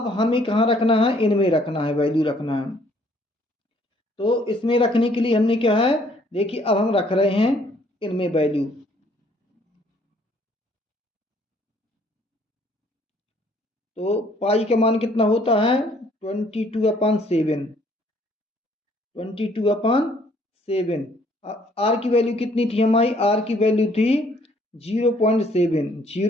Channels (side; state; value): both; normal; correlation 0.63